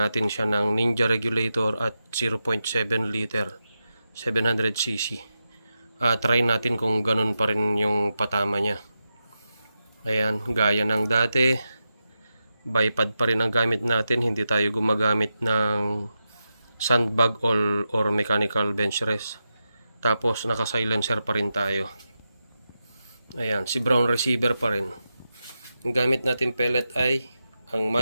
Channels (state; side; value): inverted; both; correlation -0.89